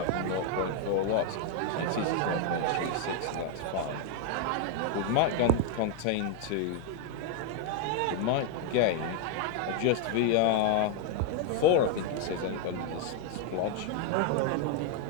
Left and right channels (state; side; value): different; both; correlation 0.01